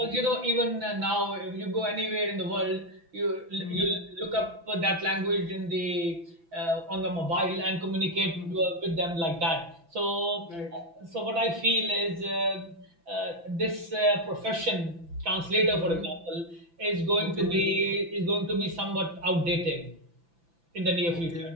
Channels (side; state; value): left; late; 5.9 ms